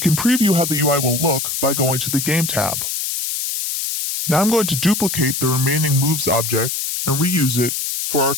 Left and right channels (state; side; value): noise; left; hiss, 3 dB below the sound